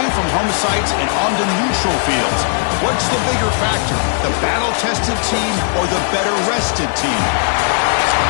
from home sites and onto neutral fields. What's the bigger factor, the battle-tested team or the better-rested team?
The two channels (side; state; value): right; silent; 69 dB below the other